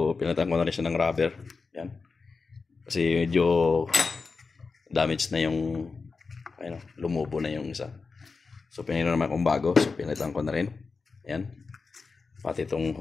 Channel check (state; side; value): quieter; right; 4.5 dB